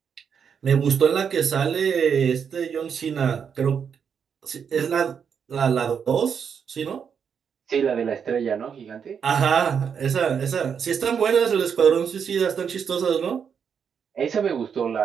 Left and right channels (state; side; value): quieter; left; 7.1 dB